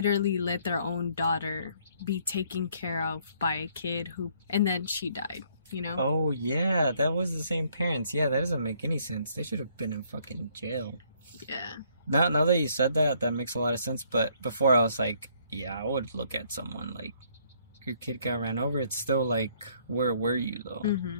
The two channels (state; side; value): inverted; both; correlation -0.66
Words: let their own daughter be taken care of by a kid and then she died, you know? Oh, yeah, that was the same parents. Yeah, that doesn't make any sense. They should have been in fucking jail. Yeah. Now that you said that makes a lot of sense. But before I was like, yeah, I would look at someone like, your kid got ran over. It's still like, where were you though?